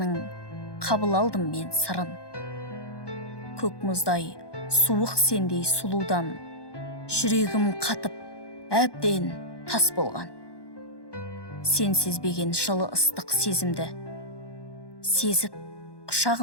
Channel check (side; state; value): right; late; 1.1 ms